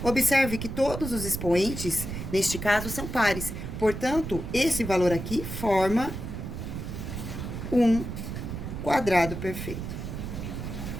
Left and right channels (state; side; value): noise; right; rumble, 6 dB below the sound